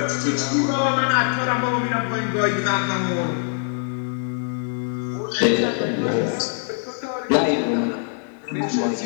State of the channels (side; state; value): right; silent; 57 dB below the other